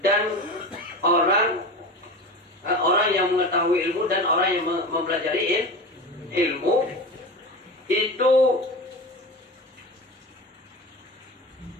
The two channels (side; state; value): both; normal; correlation 0.28